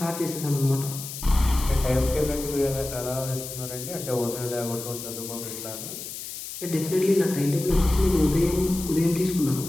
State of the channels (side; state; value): left; noise; hiss, 9 dB below the sound